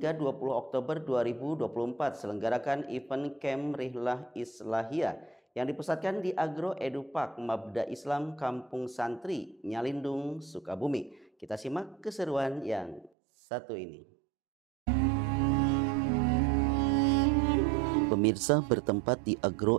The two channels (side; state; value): left; drops out; at 13.1 s